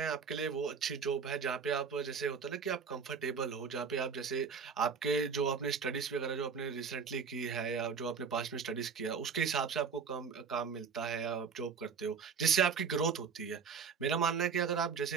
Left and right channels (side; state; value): left; quieter; 5.9 dB